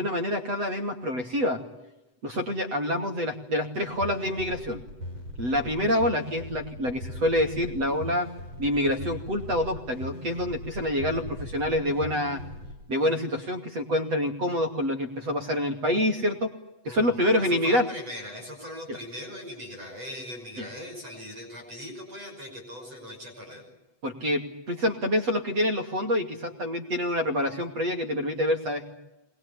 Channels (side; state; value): left; late; 8.0 ms